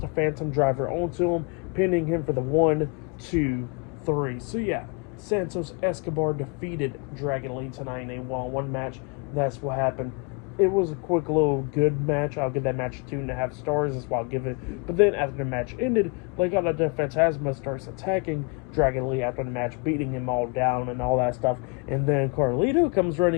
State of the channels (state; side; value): quieter; right; 33.8 dB